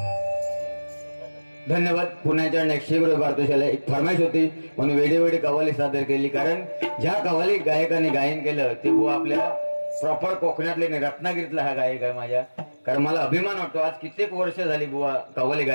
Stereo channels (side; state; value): both; inverted; correlation -1.00